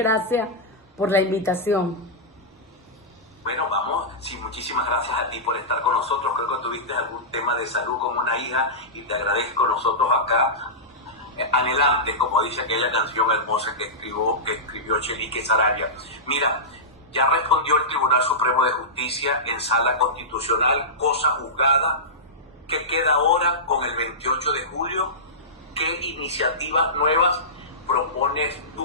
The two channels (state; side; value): normal; both; correlation -0.15